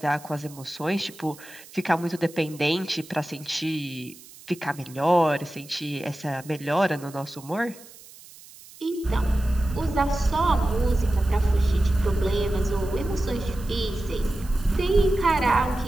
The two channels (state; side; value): noise; right; hiss, 20 dB below the sound